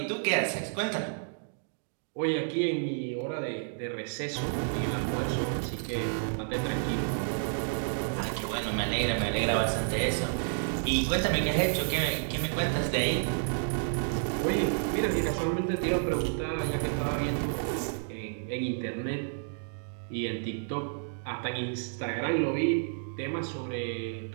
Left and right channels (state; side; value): silent; left; digital silence